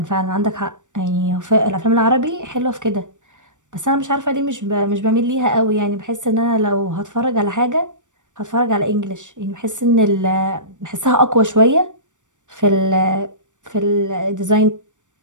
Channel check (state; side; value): late; left; 0.86 ms